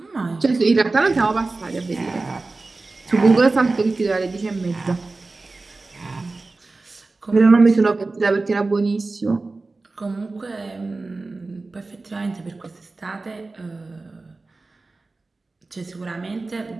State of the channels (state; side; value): quieter; left; 3.5 dB